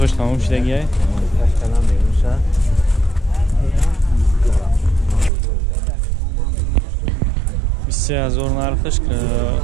تمام شدگیه 23,000 نرخش که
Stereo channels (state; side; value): drops out; left; at 5.3 s